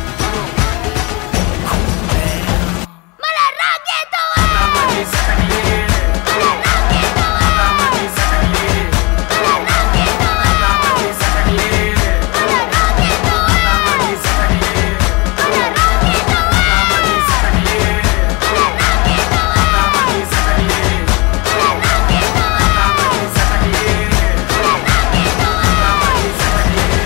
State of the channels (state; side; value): quieter; right; 27.2 dB